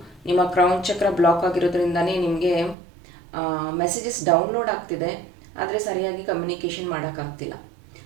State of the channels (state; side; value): drops out; left; at 2.8 s